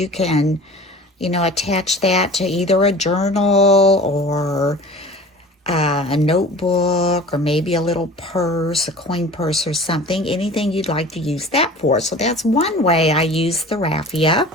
can, attach that to either a journal or a notebook or maybe a little purse, a coin purse or something, anything you'd like to use that for. So that's one way I use the raffia.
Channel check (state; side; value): normal; both; correlation 0.41